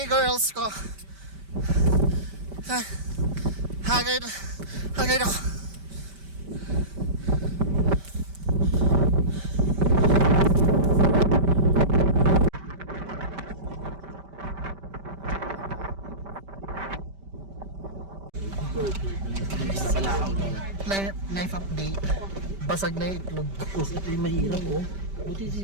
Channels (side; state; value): left; late; 5.1 ms